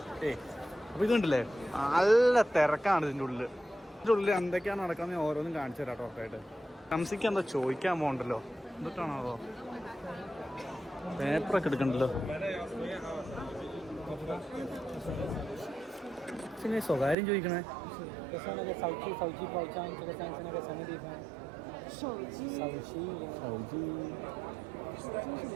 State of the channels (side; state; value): left; drops out; at 17.2 s